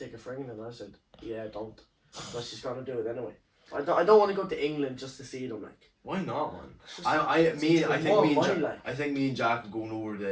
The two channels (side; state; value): both; identical; correlation 1.00